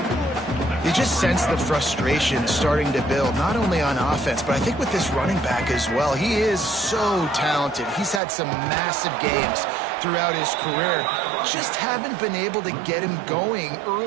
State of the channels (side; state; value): left; drops out; at 8.2 s